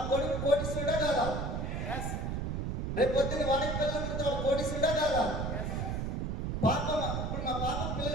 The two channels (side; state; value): right; noise; rumble, 2 dB below the sound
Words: కొడుకు కోటీశ్వరుడా కాదా? రేపు పొద్దున్న వాడికి పిల్లలు పుడితే వాడు కోటీశ్వరుడా కాదా? పాప ఇప్పుడు మా పాప